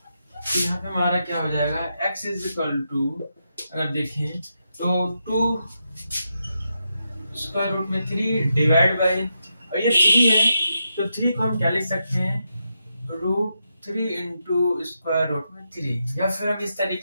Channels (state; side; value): inverted; both; correlation -0.84